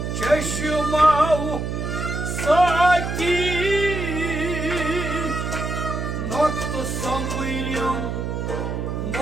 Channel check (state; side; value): noise; right; hum, 3 dB below the sound